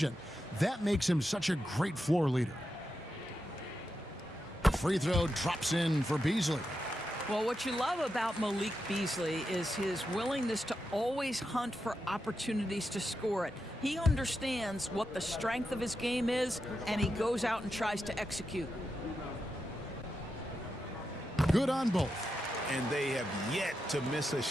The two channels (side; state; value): both; normal; correlation 0.87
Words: That makes him such a great floor leader. Free throw drops in for Beasley. Well, what you love about Malik Beasley is his willingness to always hunt for opportunities to score it. He understands what the strength of his game is, and he goes out and tries to execute. Good on both. And they have yet to miss a